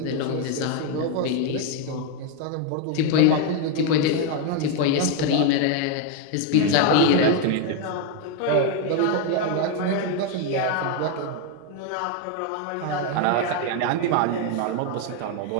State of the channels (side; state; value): both; different; correlation 0.01